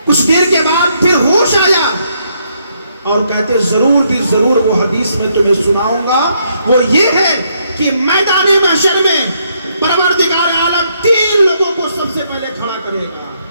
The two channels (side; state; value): both; inverted; correlation -0.74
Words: کچھ دیر کے بعد پھر ہوش آیا اور کہتے ضرور بھی ضرور وہ حدیث میں تمہیں سناؤں گا. وہ یہ ہے کہ میدان محشر میں پروردگار عالم 3 لوگوں کو سب سے پہلے کھڑا کرے گا.